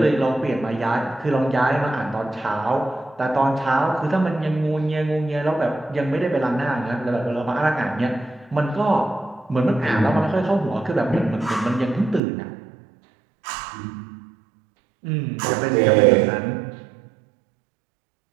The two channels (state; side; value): drops out; left; at 12.2 s